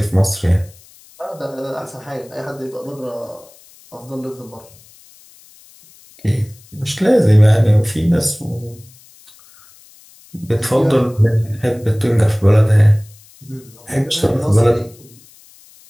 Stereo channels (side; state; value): left; noise; hiss, 26 dB below the sound